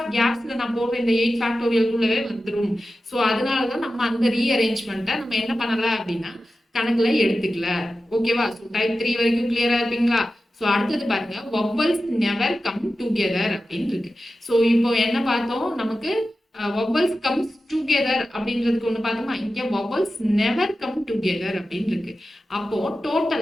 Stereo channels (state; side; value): normal; both; correlation 0.93